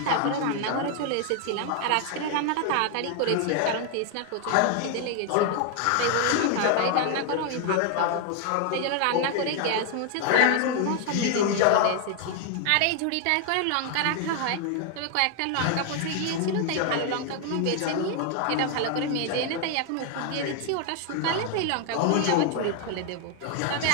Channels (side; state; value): both; different; correlation 0.00